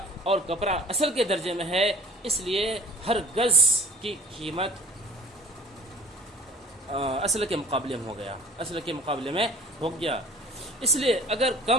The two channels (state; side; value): normal; both; correlation 0.46